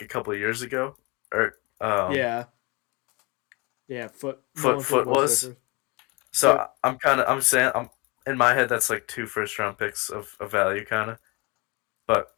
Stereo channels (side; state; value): right; quieter; 27.1 dB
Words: a couple of years ago, or Yeah, yeah. Foot Nolan Foot Foot was their was. first. So Yep. I'm saying I'm in my head that's like two first round picks of value kind of, but